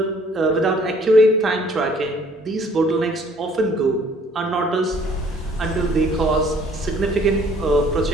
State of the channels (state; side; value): normal; both; correlation 0.58